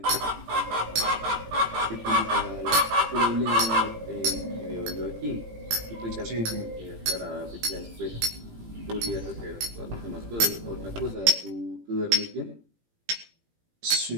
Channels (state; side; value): late; left; 18 ms